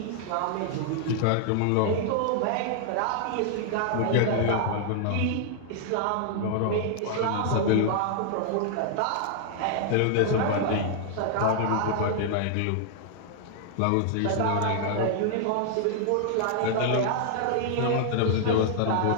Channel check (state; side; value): different; both; correlation -0.01